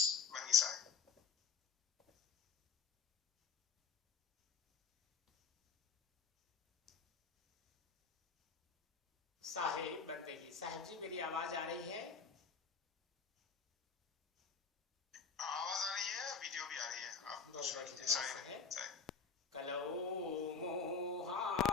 Mangi Sahib. साहेब बंदगी। साहब जी मेरी आवाज आ रही है? आवाज आ रही है, वीडियो भी आ रही है। आप कलौ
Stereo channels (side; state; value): right; quieter; 5.6 dB